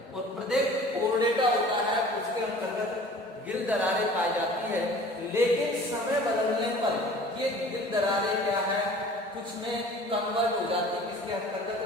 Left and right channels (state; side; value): normal; both; correlation 0.46